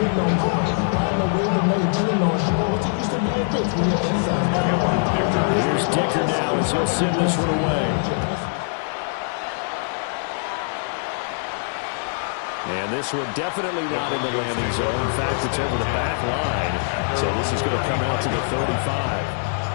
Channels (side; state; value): right; silent; digital silence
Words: Here's Dicker now as he'll send this one away. And this one definitely not in the landing zone. In fact, it's over the back line. So this is going to come out to the 35.